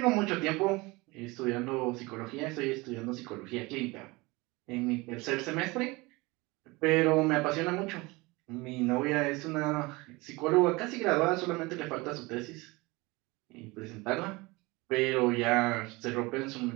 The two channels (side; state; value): left; quieter; 23.7 dB